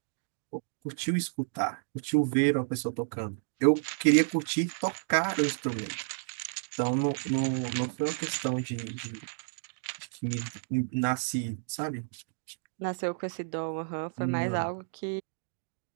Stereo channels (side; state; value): left; silent; digital silence